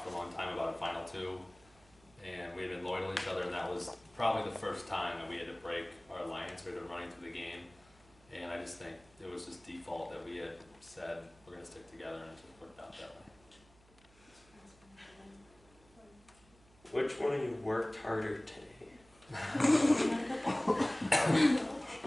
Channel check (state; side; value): noise; right; hum, 28 dB below the sound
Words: for a long time about a final 2, and we had been loyal to each other, and that was probably the first time that we had to break our alliance. We had been running through the game, and I just think it was just default that we had said we're going to stick together, and it just worked out that way. Which one of you worked harder today?